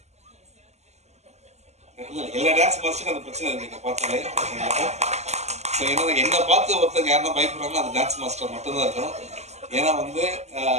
எல்லா டான்ஸ் மாஸ்டருக்கும் அந்த பிரச்சனை இருக்கு பார்த்தாலே. ஸோ ஏன்னா என்ன பார்த்து ஒருத்தங்க யாருன்னா பயப்படுறாங்கன்னா அது டான்ஸ் மாஸ்டர் மட்டும்தான் இருக்கணும். ஏன்னா வந்து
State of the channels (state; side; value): late; left; 0.33 ms